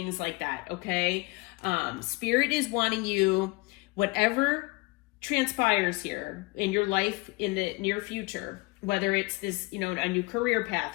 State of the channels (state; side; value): quieter; right; 25.2 dB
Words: like that. Okay. Spirit is wanting you, whatever transpires here in your life in the near future, whether it's this, a new career